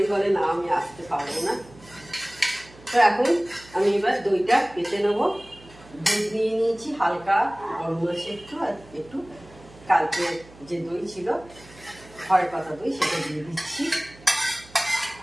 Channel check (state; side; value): noise; right; hum, 22 dB below the sound